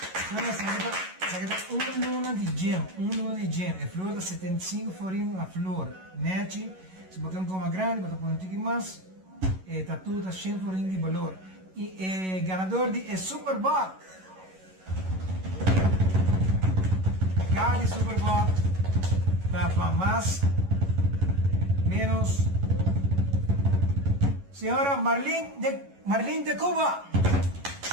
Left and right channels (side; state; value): left; late; 11 ms